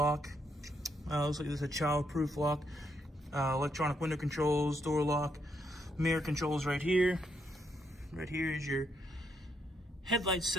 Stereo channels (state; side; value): normal; both; correlation 0.76